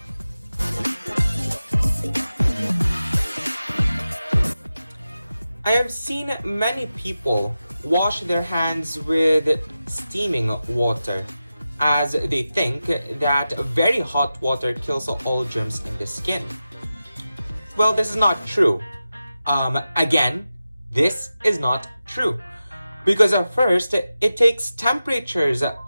I have seen many people wash their hands with steaming water, as they think that very hot water kills all germs in the skin. Well, this is not true. Again, this is not true. Because at first, it takes temperatures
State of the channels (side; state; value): both; inverted; correlation -0.93